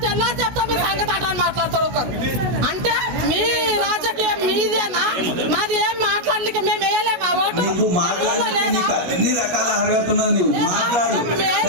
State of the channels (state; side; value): late; left; 16 ms